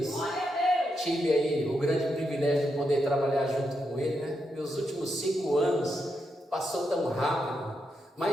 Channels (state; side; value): normal; both; correlation 0.83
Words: Tive aí o grande privilégio de poder trabalhar junto com ele, né? Meus últimos 5 anos passou tão rápido,